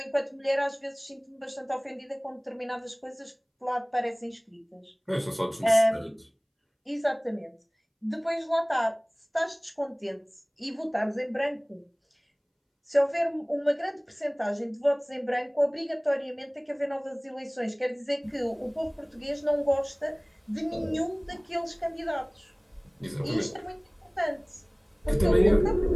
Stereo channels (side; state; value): both; identical; correlation 1.00